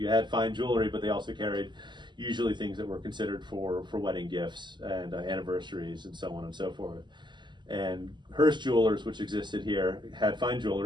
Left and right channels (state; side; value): late; left; 0.22 ms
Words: had fine jewelry, but they also carried usually things that were considered for wedding gifts and anniversaries and so on and so forth. And Hearst Jewelers, which existed here, had fine